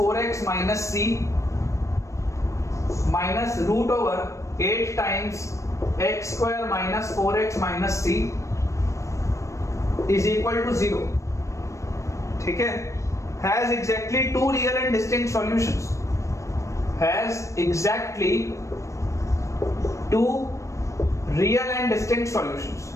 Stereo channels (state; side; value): late; right; 0.15 ms